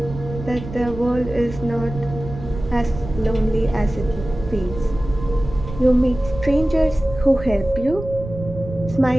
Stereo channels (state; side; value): noise; right; rumble, 11 dB below the sound